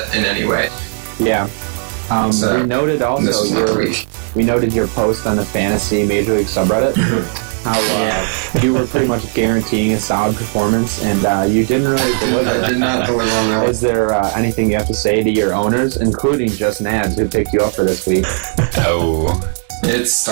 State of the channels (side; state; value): left; silent; 59 dB below the other